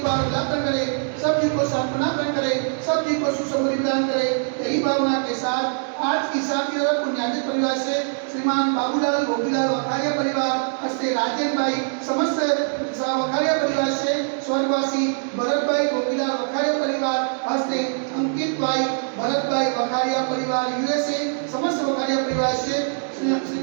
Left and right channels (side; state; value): left; silent; digital silence